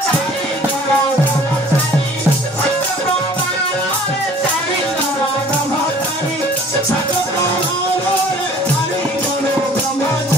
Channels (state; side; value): normal; both; correlation 0.52